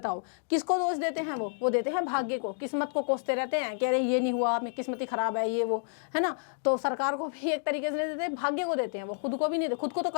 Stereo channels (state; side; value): silent; right; digital silence